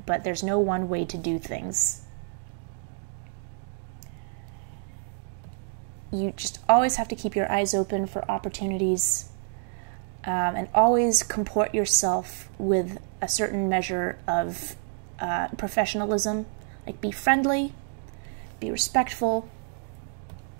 but there's no one way to do things. You just always have to keep your eyes open for opportunities, and always comport yourself with a certain measure of professionalism. Like, be friendly, be respectful.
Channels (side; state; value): left; silent; digital silence